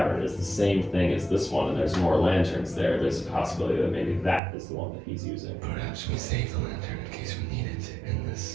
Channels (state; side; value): drops out; left; at 4.4 s